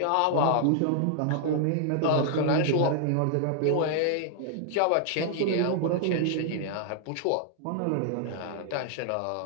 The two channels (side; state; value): both; different; correlation -0.01